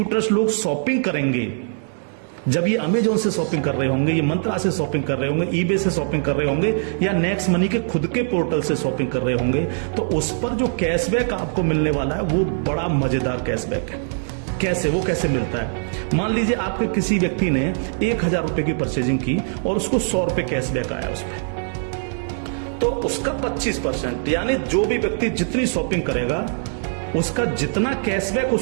लोग शॉपिंग करेंगे जब ये अमेजोन से शॉपिंग कर रहे होंगे, ये मंत्रा से शॉपिंग कर रहे होंगे, ईबे से शॉपिंग कर रहे होंगे, या नेक्स्ट मनी के खुद के पोर्टल से शॉपिंग कर रहे होंगे, तो उस पर जो कैशबैक आपको मिलने वाला है वो बड़ा मजेदार कैशबैक है। कैसे, वो कैसे मिलता है? मान लीजिए आपके किसी व्यक्ति ने 1000 रुपए की परचेजिंग की और उसको 100 रुपए कैशबैक आया उस पर, तो उसका 25%, यानी जो भी व्यक्ति जितनी शॉपिंग करेगा उसका जितना कैशबैक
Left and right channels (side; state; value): left; silent; digital silence